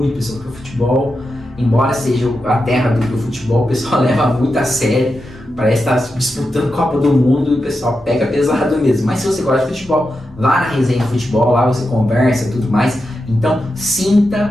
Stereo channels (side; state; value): both; normal; correlation 0.88